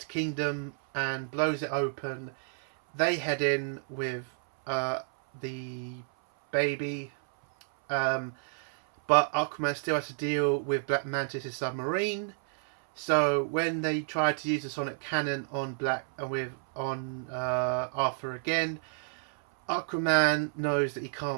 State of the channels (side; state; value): left; silent; 58 dB below the other